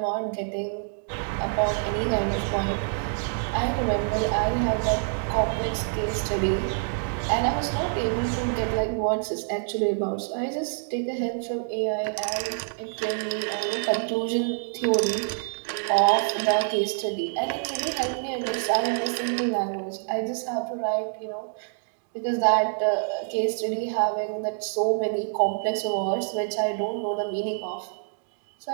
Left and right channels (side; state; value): left; silent; digital silence